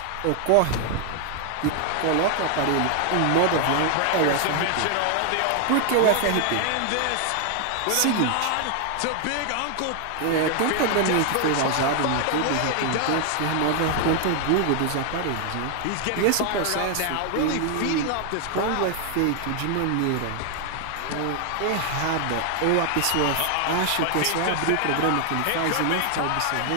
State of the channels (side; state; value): both; different; correlation 0.00